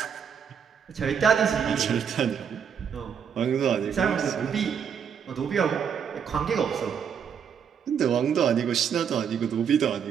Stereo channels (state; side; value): quieter; left; 7.5 dB